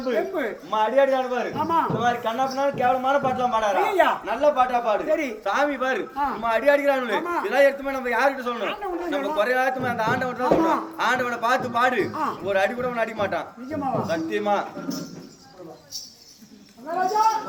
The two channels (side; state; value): both; identical; correlation 1.00